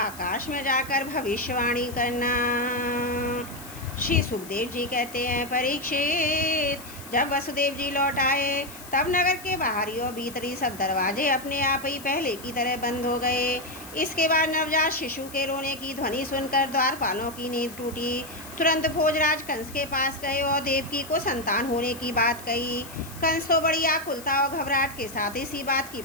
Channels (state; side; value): noise; left; hiss, 16 dB below the sound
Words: में जाकर भविष्यवाणी करना। श्री सुखदेव जी कहते हैं, परीक्षित, जब वसुदेव जी लौट आए तब नगर के बाहरी और भीतरी सब दरवाजे अपने आप ही पहले की तरह बंद हो गए। इसके बाद नवजात शिशु के रोने की ध्वनि सुनकर द्वारपालों की नींद टूटी। तुरंत भोजराज कंस के पास गए और देवकी को संतान होने की बात कही। कंस तो बड़ी आकुलता और घबराहट के साथ इसी बात की